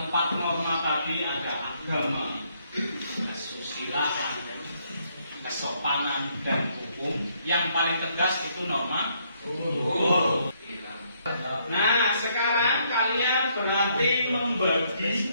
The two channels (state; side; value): inverted; both; correlation -0.71